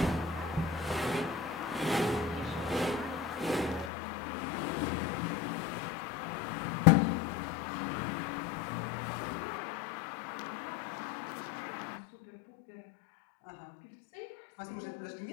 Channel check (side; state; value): right; drops out; at 3.9 s